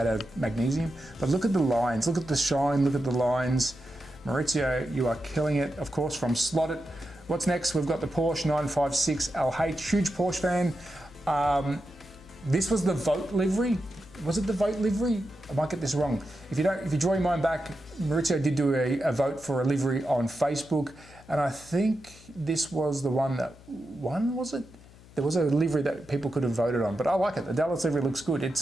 out of magnesium. But look at the lines, look at the shine, look at the lines. Maurizio, you are killing it, of course, from Slotted. What's next? We've got the Porsche 956 LH, huge Porsche fan. This was the Vote livery. Was it the Vote livery? I might get this wrong. If you draw your mind back, Maurizio did do a vote for a livery on Facebook, and I think this was the one that won, was it? There was a livery that people could have voted on, but I like it. The Dallas livery looks good.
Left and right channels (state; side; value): noise; left; hum, 22 dB below the sound